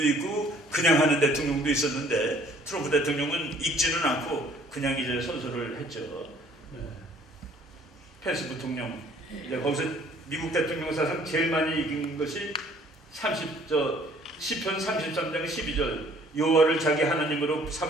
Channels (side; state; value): both; normal; correlation 0.57